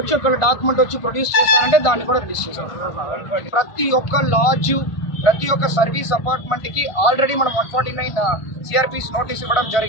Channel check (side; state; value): right; late; 1.5 ms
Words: ఒకవేళ డాక్యుమెంట్ వచ్చి ప్రొడ్యూస్ చేస్తారంటే దాన్ని కూడా రిలీజ్ చేస్తాం. ప్రతి ఒక్క లాడ్జు, ప్రతి ఒక్క సర్వీస్ అపార్ట్మెంట్కి ఆల్రెడీ మనం 149 సిఆర్పిస్ నోటీస్ ఇవ్వడం